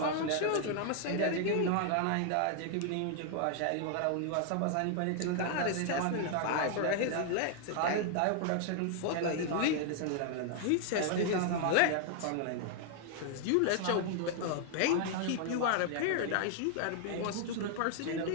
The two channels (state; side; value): different; both; correlation 0.00